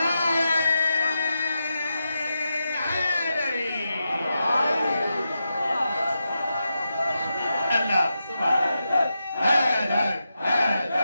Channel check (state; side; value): inverted; both; correlation -0.88